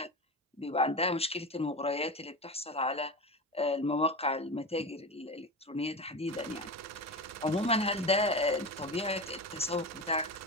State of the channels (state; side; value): normal; both; correlation 0.25